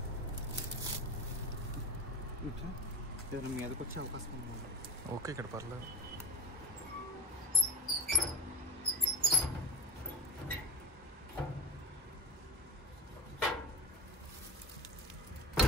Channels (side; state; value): both; normal; correlation 0.30